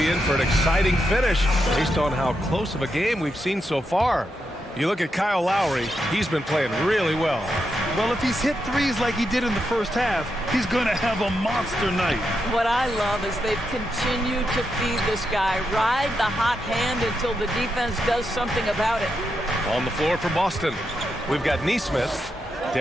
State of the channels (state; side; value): normal; both; correlation 0.84